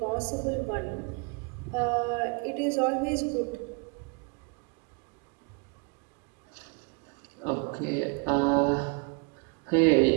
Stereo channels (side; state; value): left; quieter; 33.2 dB